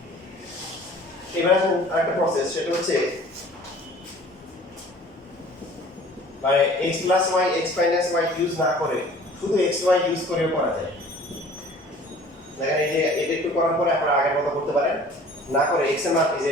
এবার আসুন আরেকটা প্রসেস সেটা হচ্ছে মানে x plus y x minus y use না করে শুধু x y ইউজ করেও করা যায় দেখেন এই যে এটা একটু করার পরে আপনারা আগের মতো করতে পারেন না করে x এর মান এই যে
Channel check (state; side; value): normal; both; correlation 0.49